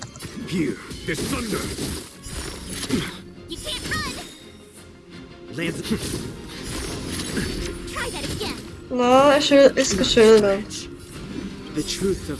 Here, there's thunder. You can't run. Lands. Try that again. Na, er ist geschildert. The truth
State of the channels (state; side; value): identical; both; correlation 1.00